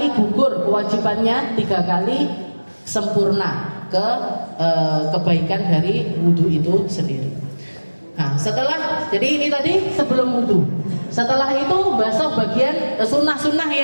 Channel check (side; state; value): both; inverted; correlation -1.00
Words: gugur kewajibannya, 3 kali sempurna kebaikan dari wudu itu sendiri. Nah, jadi ini tadi sebelum wudu. Setelah itu basuh bagian sunnah-sunnah